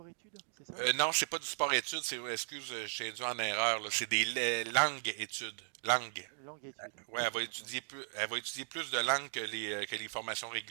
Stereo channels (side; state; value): left; silent; digital silence